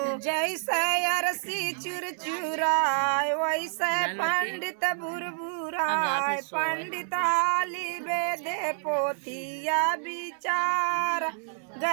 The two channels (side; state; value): left; silent; digital silence